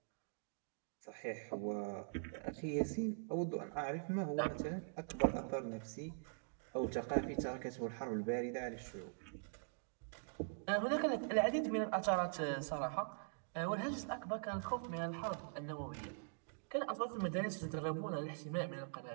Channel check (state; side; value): silent; left; digital silence